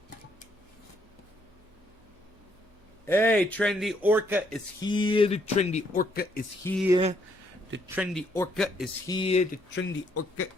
Hey, Trendy Orca is here. The Trendy Orca is here. The Trendy Orca is here. The Trendy Orca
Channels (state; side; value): normal; both; correlation 0.70